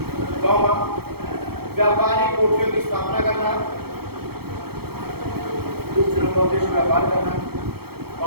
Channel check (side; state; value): left; late; 0.96 ms